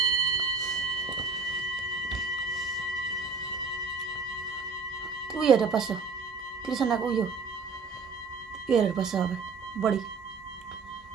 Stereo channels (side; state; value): left; quieter; 4.5 dB